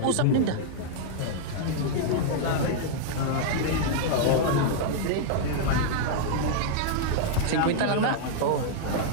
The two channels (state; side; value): different; both; correlation -0.01